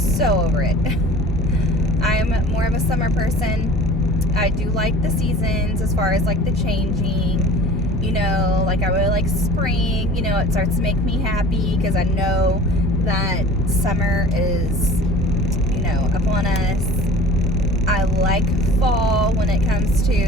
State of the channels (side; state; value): both; normal; correlation 0.44